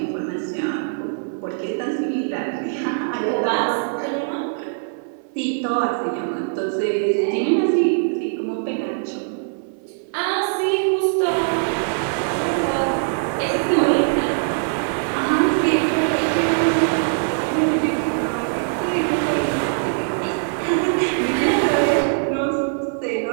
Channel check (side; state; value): left; silent; 63 dB below the other